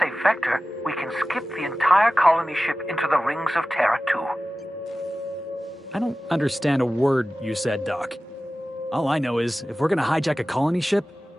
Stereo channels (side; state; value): both; normal; correlation 0.96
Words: vector, we can skip the entire colony ship into the rings of Terra 2. I don't understand a word you said, Doc. All I know is, if we're gonna hijack a colony ship,